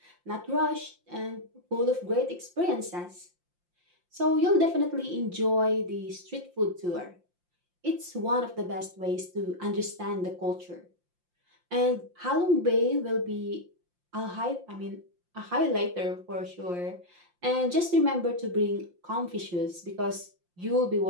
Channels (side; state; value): left; late; 5.7 ms